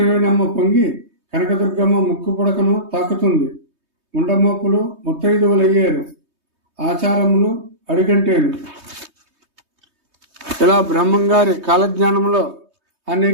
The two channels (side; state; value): left; late; 3.2 ms